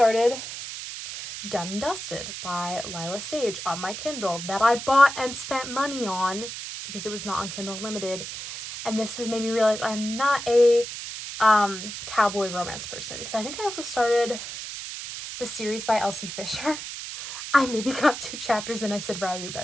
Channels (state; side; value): noise; right; hiss, 8 dB below the sound